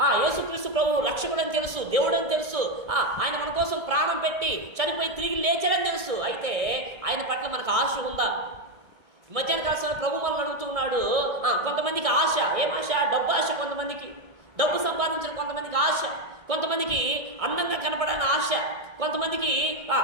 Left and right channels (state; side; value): late; left; 1.6 ms